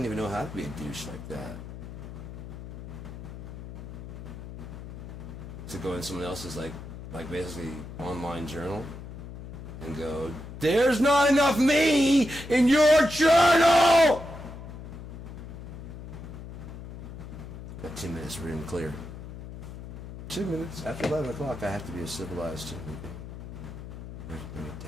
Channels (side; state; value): left; noise; hum, 11 dB below the sound